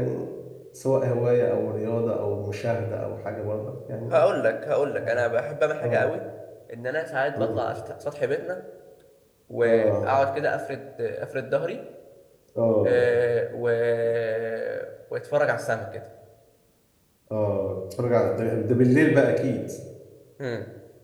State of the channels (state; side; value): identical; both; correlation 1.00